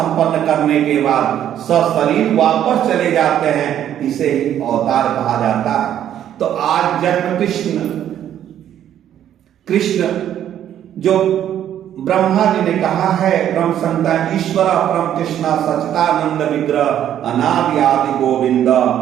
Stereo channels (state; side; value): quieter; left; 10.6 dB